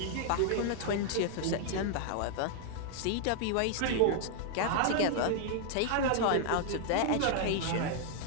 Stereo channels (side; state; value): both; different; correlation 0.00